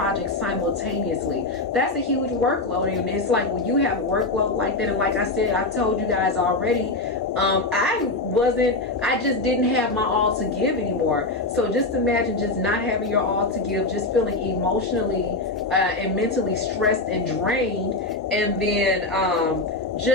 simultaneously. That's a huge workload. And it's like, when you have a workload like that, and like I said, I told you guys already, I just didn't have my all to give anymore. So just imagine just not having your all to give, just feeling emotionally and mentally stressed and drained, and then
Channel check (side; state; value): right; quieter; 3.2 dB